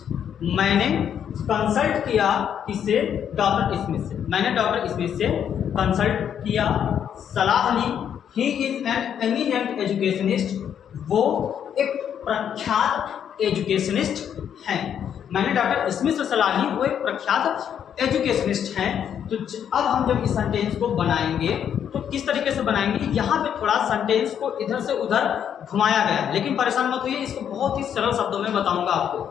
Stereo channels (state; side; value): quieter; right; 8.8 dB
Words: मैंने कंसल्ट किया किससे, डॉक्टर स्मिथ से, मैंने डॉक्टर स्मिथ से कंसल्ट किया, सलाह ली। He is an eminent educationist, वो एक प्रख्यात एजुकेशनिस्ट हैं। मैंने डॉक्टर स्मिथ से सलाह ली, वो एक प्रख्यात एजुकेशनिस्ट हैं। तो अब हम जब इस सेंटेंस को बनाएंगे तो किस तरीके से बनाएंगे, यहाँ पे थोड़ा सेंटेंस को इधर से उधर घुमाया गया है, लेकिन परेशान मत होइए, इसको बहुत ही सरल शब्दों में बताऊंगा आपको,